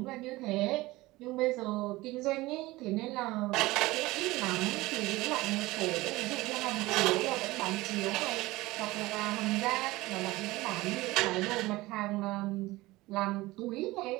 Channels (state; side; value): quieter; left; 19.6 dB